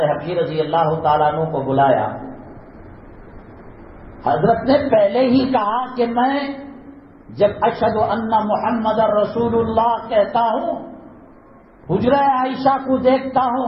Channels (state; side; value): identical; both; correlation 1.00